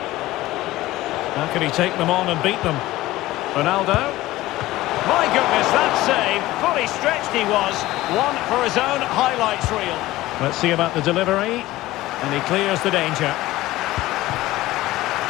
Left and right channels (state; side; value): quieter; right; 17.1 dB